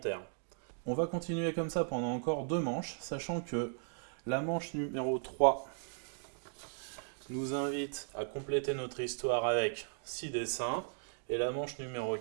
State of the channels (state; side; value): silent; left; digital silence